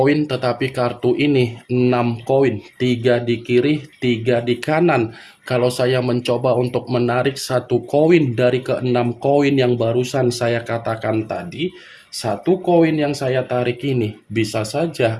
tetapi kartu ini 6 koin, 3 di kiri, 3 di kanan. Kalau saya mencoba untuk menarik 1 koin dari ke-6 koin yang barusan saya katakan tadi, 1 koin yang saya tarik ini bisa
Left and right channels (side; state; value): both; identical; correlation 1.00